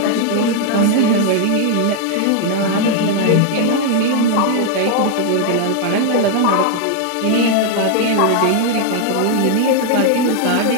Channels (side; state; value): both; different; correlation 0.00